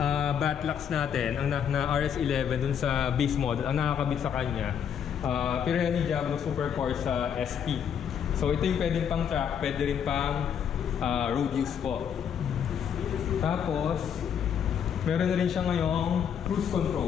batlocks natin, ang na RS11 dun sa base model, ang nakakabit sa kanya, Pirelli Diablo Super Corsa SP. So ito yung pwedeng pang track, pwede rin pang road use po. Tapos, meron na rin siya ngayong cruise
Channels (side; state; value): right; quieter; 8.2 dB